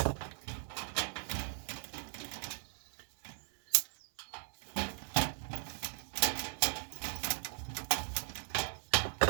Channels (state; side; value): silent; left; 52 dB below the other